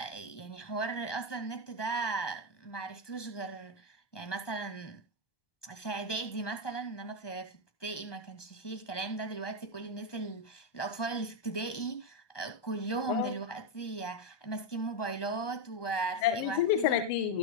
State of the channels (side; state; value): right; late; 1.2 ms